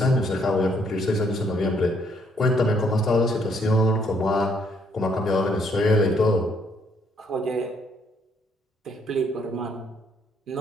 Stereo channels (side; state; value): both; normal; correlation 0.69